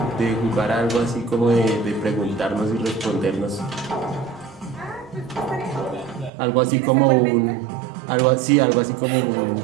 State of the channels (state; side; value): drops out; left; at 6.3 s